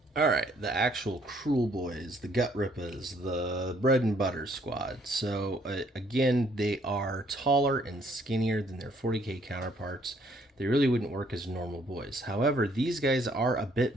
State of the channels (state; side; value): normal; both; correlation 0.65